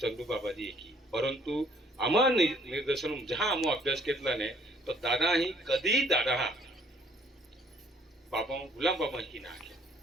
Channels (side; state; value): both; normal; correlation 0.61